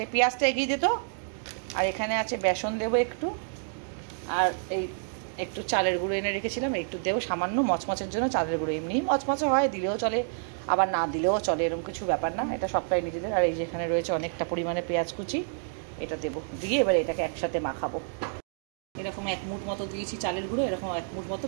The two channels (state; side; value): silent; left; digital silence